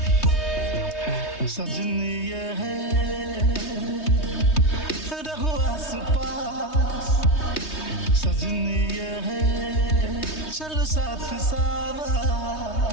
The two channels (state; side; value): late; right; 3.2 ms